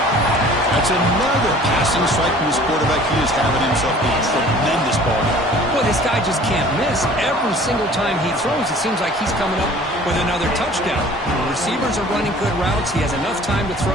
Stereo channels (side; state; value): both; normal; correlation 0.49